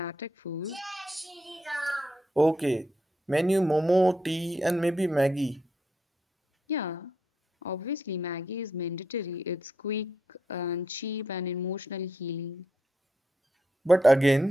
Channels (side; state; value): both; normal; correlation 0.79